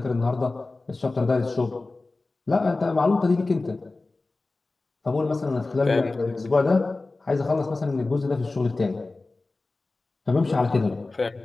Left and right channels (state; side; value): quieter; right; 3.3 dB